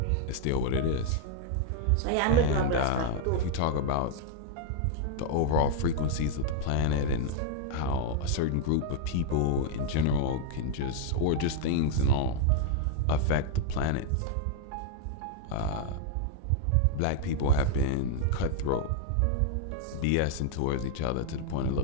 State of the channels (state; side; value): different; both; correlation 0.00